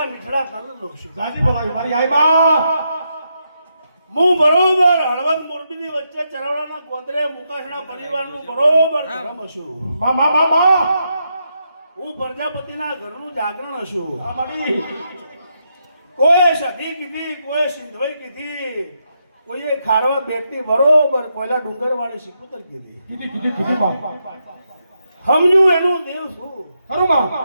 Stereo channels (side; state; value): both; inverted; correlation -0.82